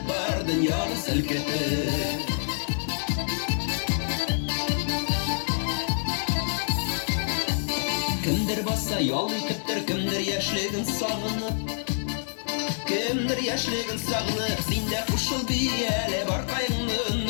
var dünyanı silketip. Kimdir bassa yol yıkıptır, kimdir yaşligin sağınıp, kimdir yaşligin sağınıp. Sinde kuşul bir ele bar kaygını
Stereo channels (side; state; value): right; silent; digital silence